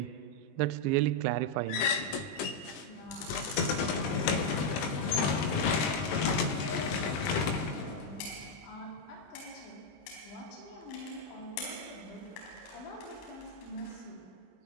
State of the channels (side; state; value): right; late; 20 ms